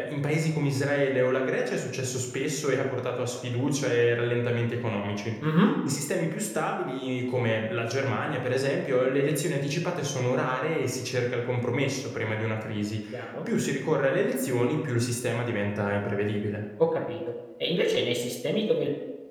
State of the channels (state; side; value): identical; both; correlation 1.00